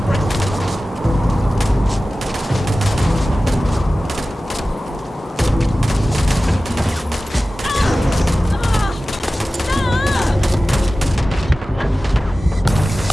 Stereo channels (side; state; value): both; normal; correlation 0.96